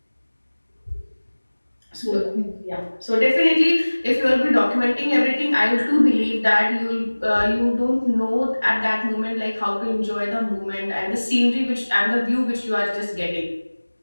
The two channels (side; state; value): both; inverted; correlation -1.00